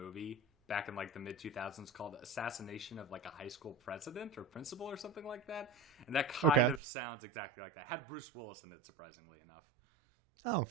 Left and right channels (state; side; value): drops out; left; at 6.8 s